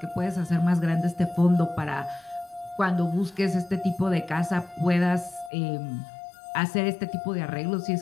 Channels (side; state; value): right; drops out; at 5.5 s